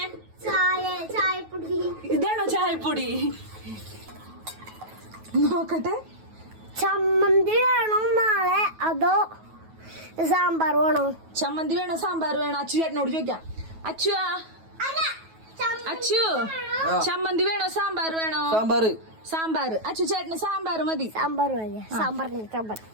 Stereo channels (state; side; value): late; left; 9.3 ms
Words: ഇതാണോ ചായപ്പൊടി? നോക്കട്ടെ. ചമ്മന്തി വേണോ നാളെ അതോ സാമ്പാർ വേണോ? ചമ്മന്തി വേണോ സാമ്പാർ വേണോ? അച്ചു ചേട്ടനോട് ചോദിക്കാം. അച്ചുവാ, അച്ചു ചമ്മന്തി വേണോ സാമ്പാർ വേണോ? സാമ്പാർ. അച്ചു ചേട്ടന് സാമ്പാർ മതി. സാമ്പാർ മതി. സാമ്പാർ